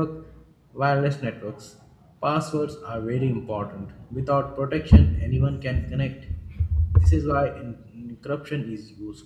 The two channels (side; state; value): both; identical; correlation 1.00